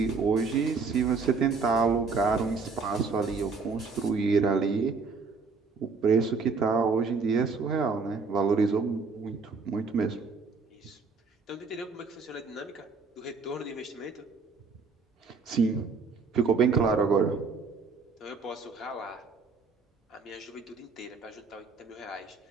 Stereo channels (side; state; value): left; quieter; 4.7 dB